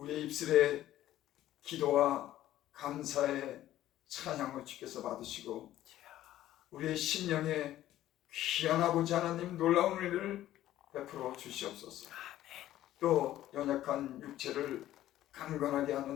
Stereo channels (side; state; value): right; quieter; 13.6 dB